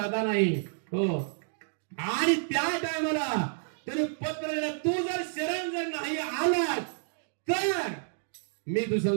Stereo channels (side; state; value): left; silent; digital silence